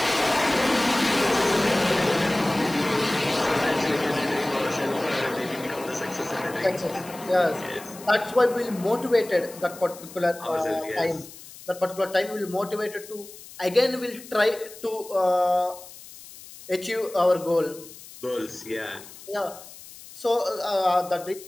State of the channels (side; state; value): left; noise; hiss, 17 dB below the sound